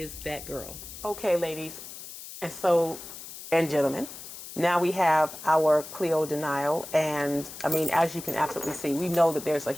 that girl. Okay, ladies and gentlemen, now we have our Cleo Denial, and I mean, as you can absolutely see, we know that there's a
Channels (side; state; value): left; noise; hiss, 13 dB below the sound